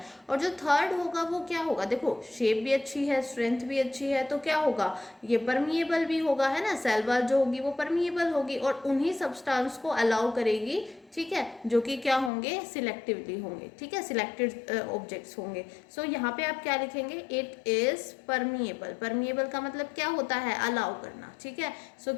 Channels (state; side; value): drops out; right; at 12.3 s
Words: और जो थर्ड होगा वो क्या होगा, देखो शेप भी अच्छी है, स्ट्रेंथ भी अच्छी है, तो क्या होगा, ये परमिएबल भी होगा, है ना। सेल वॉल जो होगी वो परमिएबल होगी और उन्हीं सब्सटेंस को अलाउ करेगी, ठीक है, जो कि क्या होंगे, सिलेक्टिवली होंगे, ठीक है, सिलेक्टेड ऑब्जेक्ट्स होंगे। सो यहाँ पे आप क्या लिखेंगे, इट इज परमिएबल। परमिएबल का मतलब क्या होता है, अलाउ करना, ठीक है। सो